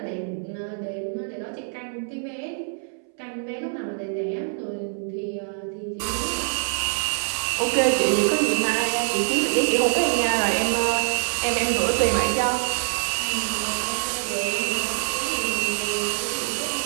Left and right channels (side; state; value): left; silent; 62 dB below the other